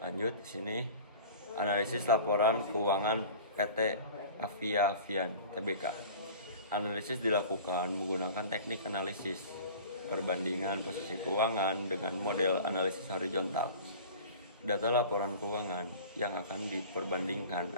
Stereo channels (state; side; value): inverted; both; correlation -0.41